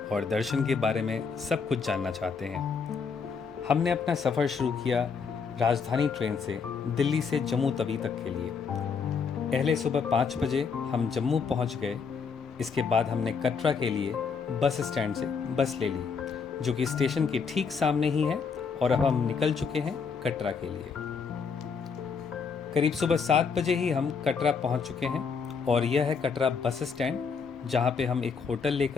और दर्शन के बारे में सब कुछ जानना चाहते हैं। हमने अपना सफ़र शुरू किया राजधानी ट्रेन से दिल्ली से जम्मू तवी तक के लिए। पहले सुबह 5 बजे हम जम्मू पहुंच गए। इसके बाद हमने कटरा के लिए बस स्टैंड से बस ले ली, जो कि स्टेशन के ठीक सामने ही है, और अब हम निकल चुके हैं कटरा के लिए। करीब सुबह 7 बजे ही हम कटरा पहुंच चुके हैं और यह है कटरा बस स्टैंड, जहां पे हम एक होटल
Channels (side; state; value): right; quieter; 5.7 dB